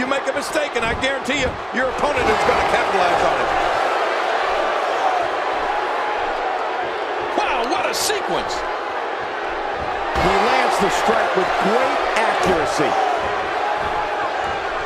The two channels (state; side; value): identical; both; correlation 1.00